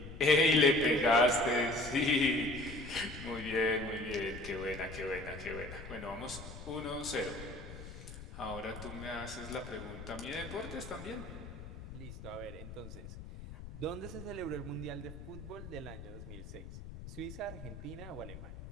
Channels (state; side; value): noise; left; rumble, 12 dB below the sound